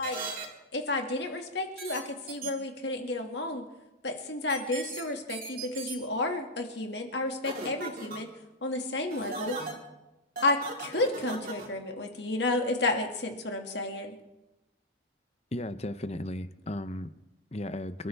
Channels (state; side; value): normal; both; correlation -0.03